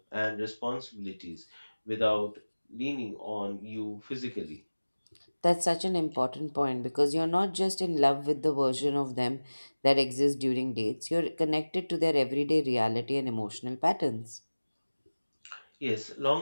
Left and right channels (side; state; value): both; inverted; correlation -1.00